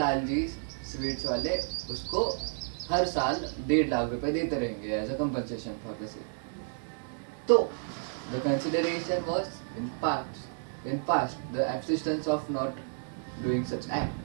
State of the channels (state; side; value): silent; left; digital silence